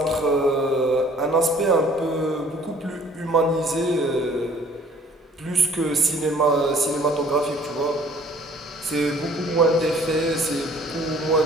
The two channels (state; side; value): normal; both; correlation 0.55